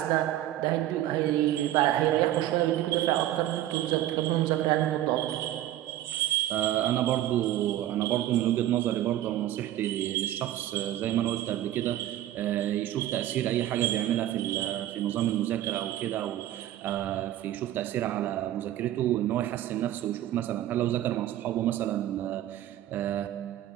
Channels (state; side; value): quieter; left; 13.2 dB